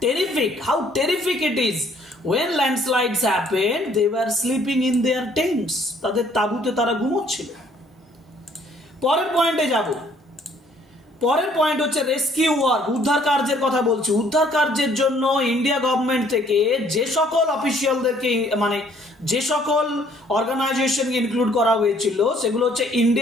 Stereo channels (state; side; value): normal; both; correlation 0.62